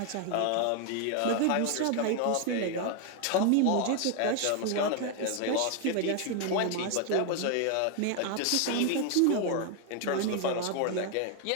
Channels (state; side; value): different; both; correlation 0.00